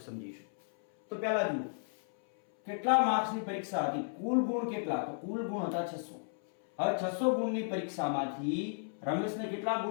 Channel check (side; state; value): right; silent; 55 dB below the other